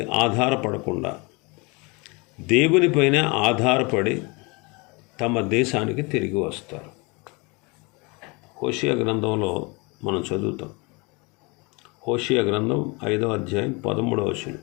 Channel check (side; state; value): right; quieter; 28.1 dB